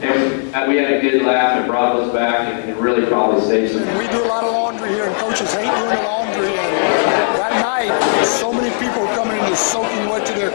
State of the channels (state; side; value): silent; right; 60 dB below the other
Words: we had a good laugh and brought those back and really probably saved some. We do a lot of laundry here, and coaches hate doing the laundry. And that night, so many people were coming in just soaking wet to their